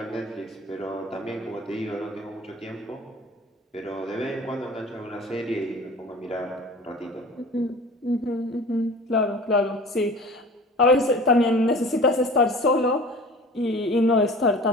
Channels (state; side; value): normal; both; correlation 0.42